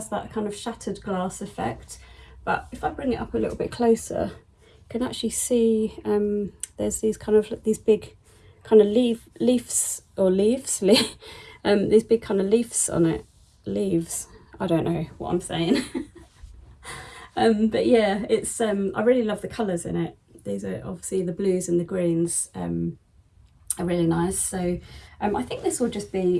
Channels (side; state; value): both; identical; correlation 1.00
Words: that kind of shattered glass effect. But if I bring it up a little bit closer, you can actually see there's these kind of these big kind of leaves these big kind of leaves on it. Leaves, I don't know what I'm saying. But yeah, it's I really love the colours in it. These are obviously the blues and the greens are really nice. So I think this will just